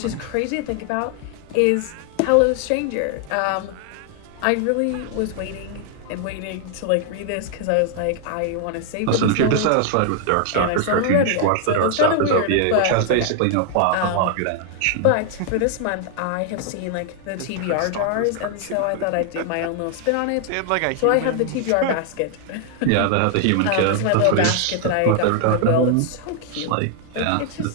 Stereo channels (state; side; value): different; both; correlation 0.00